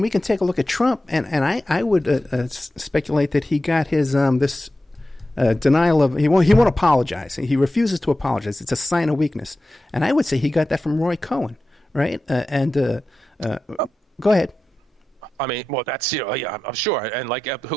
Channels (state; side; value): normal; both; correlation 0.92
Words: we can take a look at Trump, and I would speculate that he got his this denial of he won't apologize. He refuses to apologize. It's a sign of weakness, and I would say he got that from Roy Cohen, right? Go ahead. I mean, well, that's yeah, I'm sure. And like,